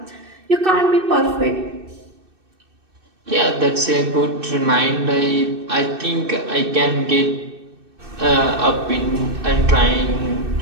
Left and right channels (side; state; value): left; late; 2.6 ms